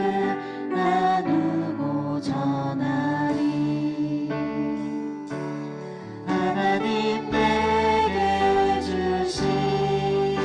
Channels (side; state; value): both; identical; correlation 1.00